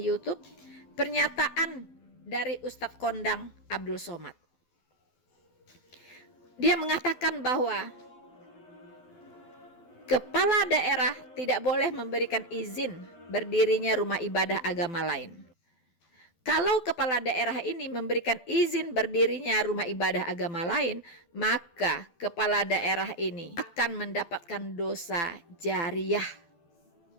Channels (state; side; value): late; right; 12 ms